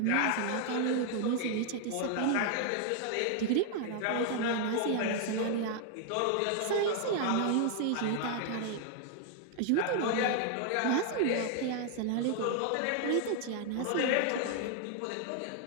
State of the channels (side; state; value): both; different; correlation 0.00